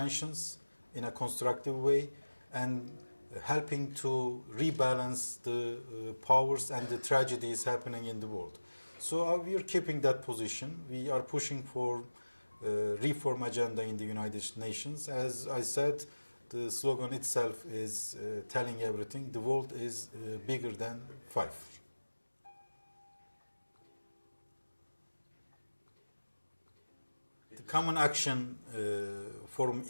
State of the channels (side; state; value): both; inverted; correlation -1.00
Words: in a constructive way and helping to rebalance the powers and the tragedies happening in the world. So we are keeping that position. We are pushing for reform agenda in the United Nations. As I said, the slogan itself is telling everything. The world is bigger than five. The Common Action Forum